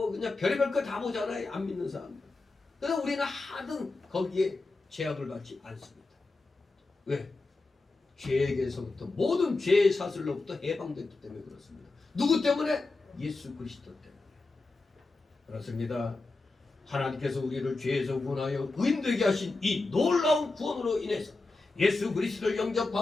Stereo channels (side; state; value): right; quieter; 3.4 dB